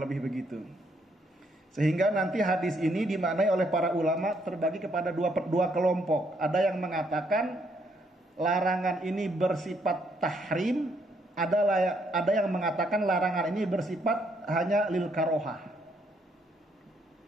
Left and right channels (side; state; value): both; normal; correlation 0.72